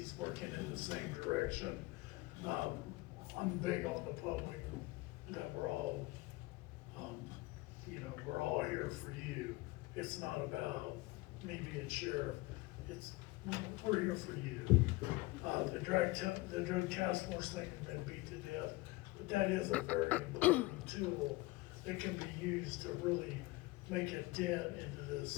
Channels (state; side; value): quieter; right; 21.4 dB